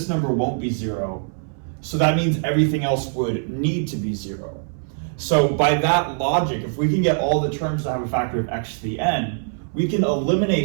number won't be 0. So that means everything else would need to be 0. So by that logic, if we can get all the terms to have a factor of x to the n, we can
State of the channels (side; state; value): left; silent; 61 dB below the other